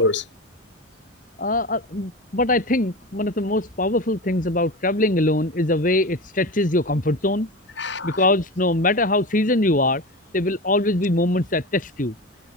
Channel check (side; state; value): both; normal; correlation 0.26